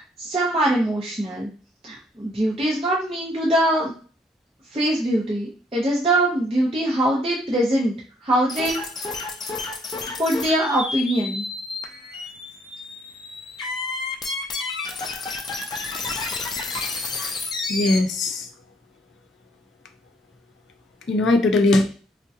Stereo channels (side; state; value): both; normal; correlation 0.66